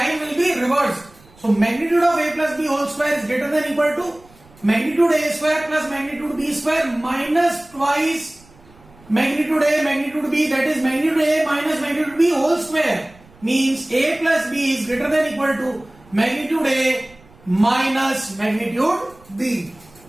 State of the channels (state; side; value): noise; right; rumble, 27 dB below the sound